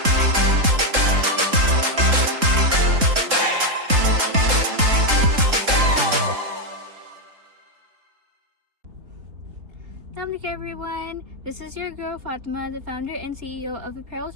Assalamualaikum everyone, this is your girl Fatima, the founder and CEO of Apparels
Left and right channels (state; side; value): late; left; 3.7 ms